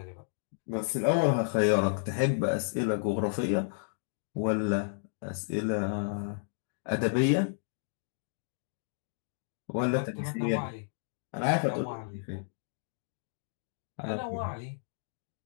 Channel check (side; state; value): right; silent; digital silence